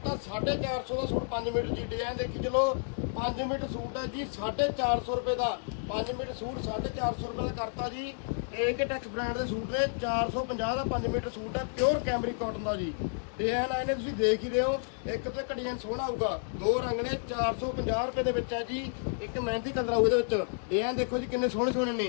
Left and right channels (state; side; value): silent; right; digital silence